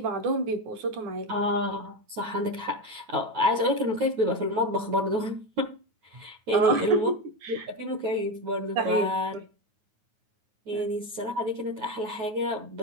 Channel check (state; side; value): late; left; 9.4 ms